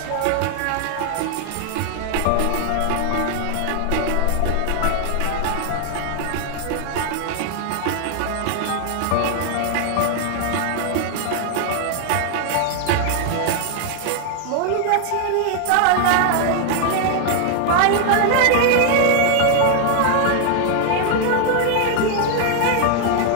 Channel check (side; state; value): both; different; correlation 0.00